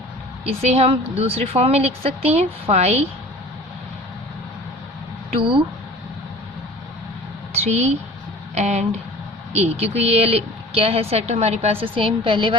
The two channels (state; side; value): normal; both; correlation 0.43